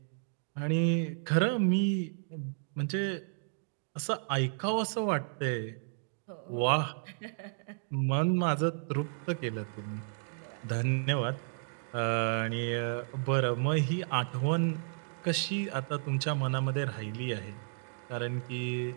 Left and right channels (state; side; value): silent; left; digital silence